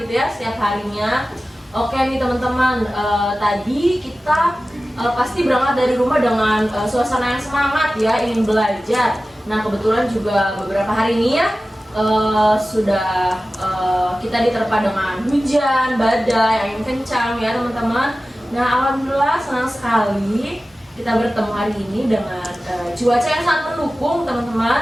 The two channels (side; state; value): both; normal; correlation 0.96